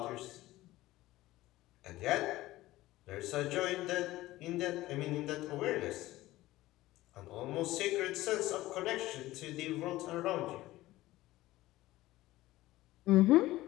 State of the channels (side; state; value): right; quieter; 17.1 dB